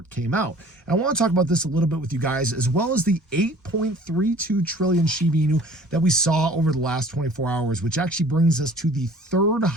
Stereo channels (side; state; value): both; normal; correlation 0.49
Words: came out. And I want to talk about this a little bit with you guys, as well as the 8.32 trillion Shiba Inu that we saw over the last 24 hours, which actually brings us to the third